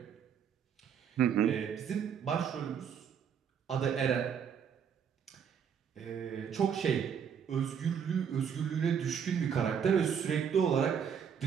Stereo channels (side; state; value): left; quieter; 7.6 dB